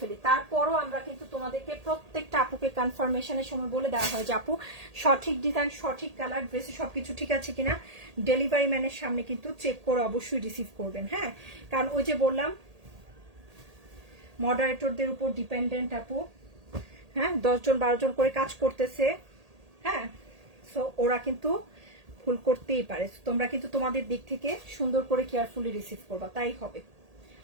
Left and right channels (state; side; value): late; left; 1.8 ms